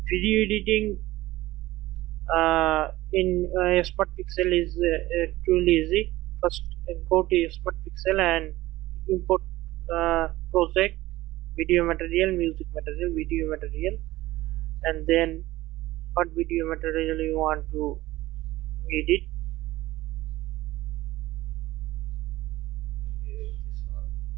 Video editing in Smart Pixel is truly easy. First, go to Smart Pixel and import project, video material, music material, video material, and then what video material you want to edit. This one,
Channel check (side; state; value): left; quieter; 17.4 dB